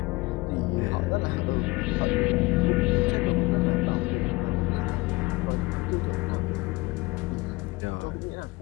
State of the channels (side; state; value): right; quieter; 23.2 dB